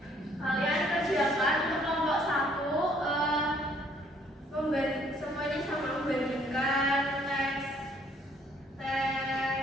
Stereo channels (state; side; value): normal; both; correlation 0.63